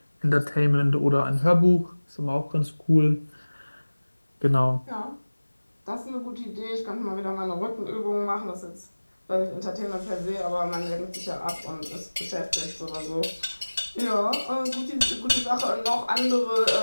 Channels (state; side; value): inverted; both; correlation -1.00